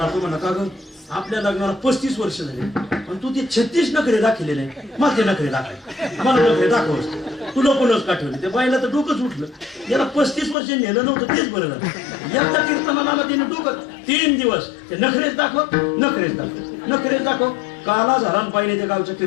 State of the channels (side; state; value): right; drops out; at 10.6 s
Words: तो म्हणा, का ग आपल्या लग्नाला 35 वर्ष झाले पण तू ते 36 नखरे दाखवले नाही, मग ते नखरे दाखव, मला नखरे दाखवस. तुला कोणच का ठेवले? ते बाईला तर डोकंच उठलं. याला 35 वर्ष नेलं नव्हतं, तेच बरं झालं. एकदा कीर्तनाला तिने डोकं 3 दिवस ते नखरेच दाखव. काला झाला पाहिजे त्या गावच्या